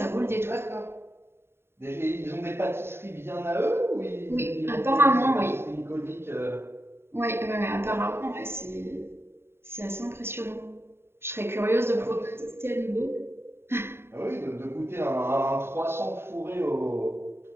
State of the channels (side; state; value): left; late; 0.11 ms